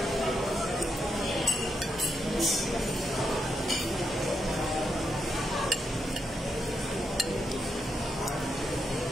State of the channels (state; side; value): normal; both; correlation 0.81